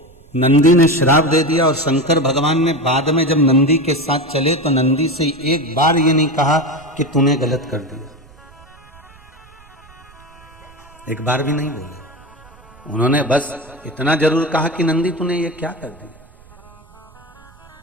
नंदी ने श्राप दे दिया और शंकर भगवान ने बाद में जब नंदी के साथ चले तो नंदी से एक बार ये नहीं कहा कि तूने गलत कर दिया, एक बार भी नहीं बोले। उन्होंने बस इतना जरूर कहा कि नंदी तूने ये क्या कर दिया,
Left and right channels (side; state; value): right; noise; rumble, 25 dB below the sound